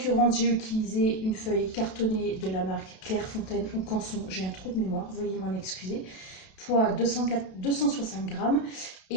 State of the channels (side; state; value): right; late; 32 ms